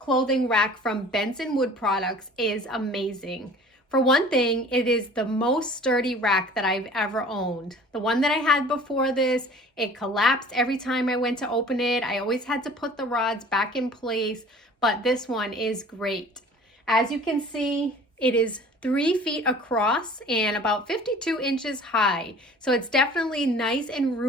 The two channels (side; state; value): both; normal; correlation 0.47